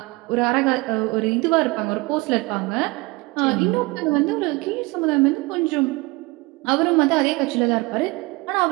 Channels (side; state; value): left; quieter; 24.1 dB